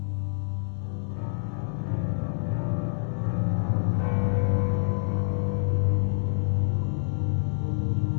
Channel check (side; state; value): right; silent; 60 dB below the other